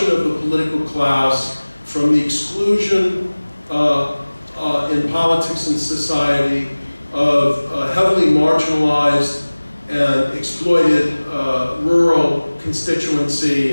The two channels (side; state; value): both; inverted; correlation -1.00